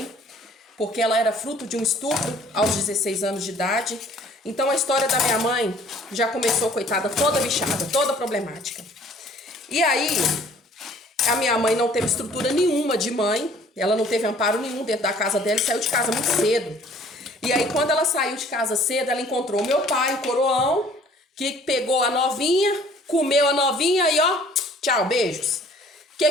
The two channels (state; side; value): normal; both; correlation 0.55